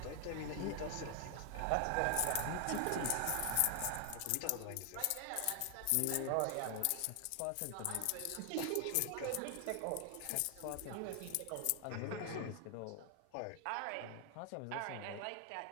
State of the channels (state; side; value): different; both; correlation 0.00